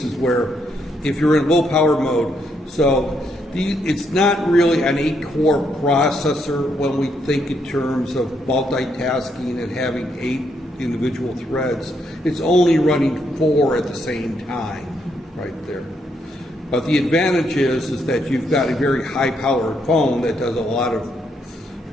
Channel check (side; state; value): both; normal; correlation 0.76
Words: where if you're in low power mode, so it's not really an 8-core processor when we think in terms of multitasking and having 8 individual threads. It's only running 4 at the same time, right there. But the advantage is that you've got a very high-powered phone that does a lot of,